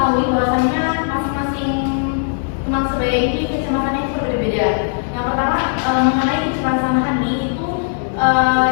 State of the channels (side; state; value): right; silent; digital silence